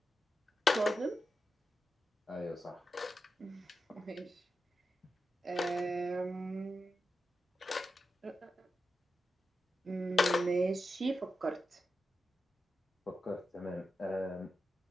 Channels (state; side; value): normal; both; correlation 0.89